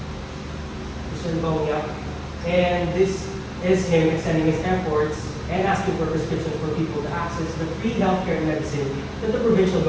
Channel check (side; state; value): both; identical; correlation 1.00